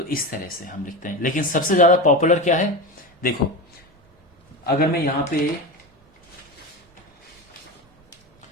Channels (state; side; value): normal; both; correlation 0.22